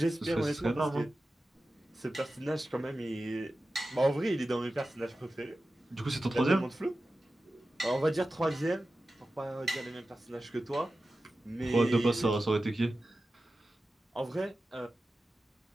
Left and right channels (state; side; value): normal; both; correlation 0.94